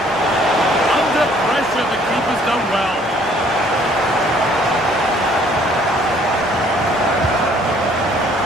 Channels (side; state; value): both; normal; correlation 0.60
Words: Under pressure, the keeper's done well.